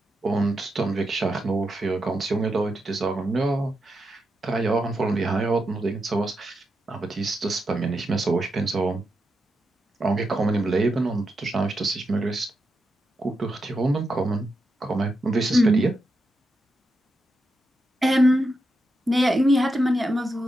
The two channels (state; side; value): normal; both; correlation 0.86